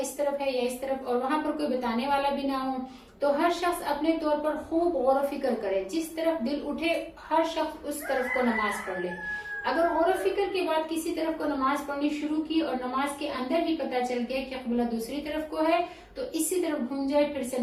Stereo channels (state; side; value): identical; both; correlation 1.00